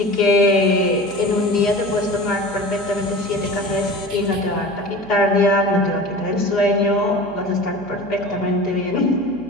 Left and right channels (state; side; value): noise; right; hum, 22 dB below the sound